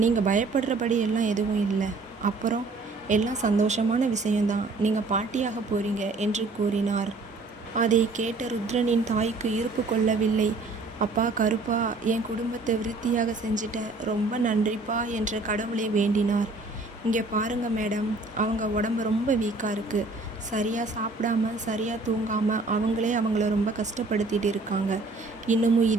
நீங்கள் பயப்படுறபடி எல்லாம் எதுவும் இல்லை. அப்புறம் எல்லாம் சந்தோஷமான விஷயம்தான். நீங்கள் பாட்டியாக போறீங்க என்று கூறினார். அதை கேட்ட ருத்ரனின் தாய்க்கு இருப்பு கொள்ளவில்லை. அப்பா கருப்பா, என் குடும்பத்தை விருத்தியாக செஞ்சிட்ட, ரொம்ப நன்றிப்பா என்று கடவுளை வேண்டினார். இங்கே பாருங்க மேடம், அவங்க உடம்பு ரொம்ப வீக்காக இருக்குது. சரியாக சாப்பிடாம சரியாக தூங்காமல் அவங்களே அவங்கள ரொம்ப கஷ்டப்படுத்திட்டு இருக்காங்க. இன்னமும்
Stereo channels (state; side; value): quieter; left; 3.5 dB